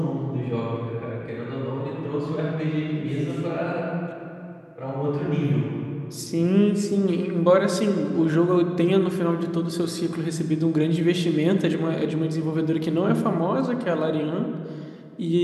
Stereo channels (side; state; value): both; identical; correlation 1.00